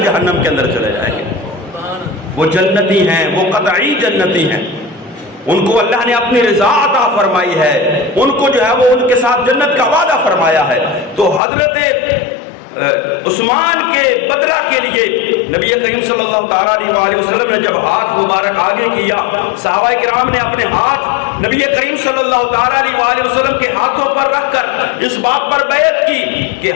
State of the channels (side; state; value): right; drops out; at 11.4 s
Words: جہنم کے اندر چلے جائیں گے؟ وہ جنتی ہیں، وہ قطعی جنتی ہیں، ان کو اللہ نے اپنی رضا عطا فرمائی ہے، ان کو جو ہے وہ ان کے ساتھ جنت کا وعدہ فرمایا ہے۔ تو حضرت عثمان کے بدلہ کے لیے نبی کریم صلی اللہ تعالیٰ علیہ وآلہ وسلم نے جب ہاتھ مبارک آگے کیا، صحابہ کرام نے اپنے ہاتھ نبی کریم صلی اللہ تعالیٰ علیہ وآلہ وسلم کے ہاتھوں پر رکھ کر اس بات پر بیعت کی کہ